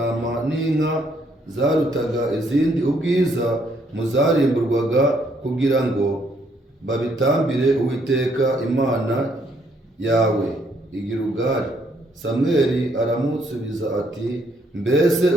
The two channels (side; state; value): both; normal; correlation 0.70